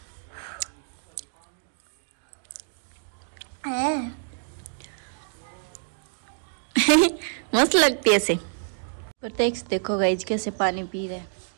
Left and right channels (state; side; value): silent; left; digital silence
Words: मस्त लगती है ऐसे। प्रत्यक्ष देखो गाइस कैसे पानी पी रहे हैं।